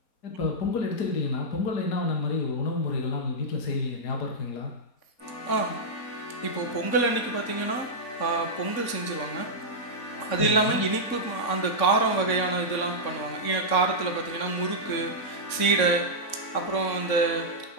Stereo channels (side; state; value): right; late; 4.2 ms